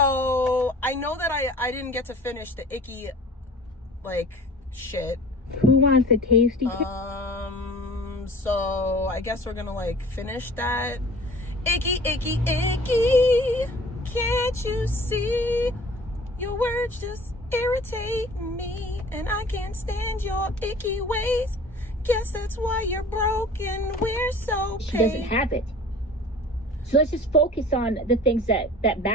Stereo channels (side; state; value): both; normal; correlation 0.45